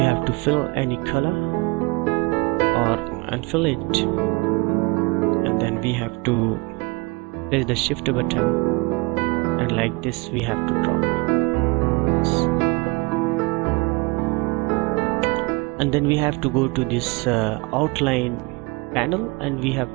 have to fill any color or unfill it, and then we have to press the shift button like this we have to draw. And then we have to go to this outline panel, and we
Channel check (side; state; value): left; quieter; 26.6 dB